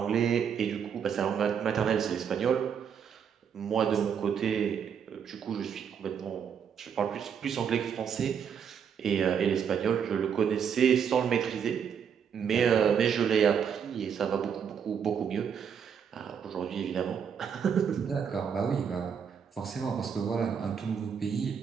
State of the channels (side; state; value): left; quieter; 7.5 dB